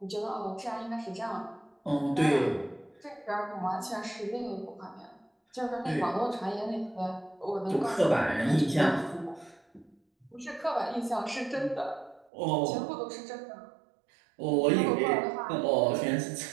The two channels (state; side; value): drops out; left; at 12.3 s